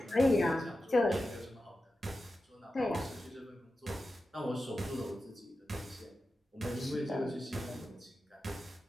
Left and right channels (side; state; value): both; normal; correlation 0.92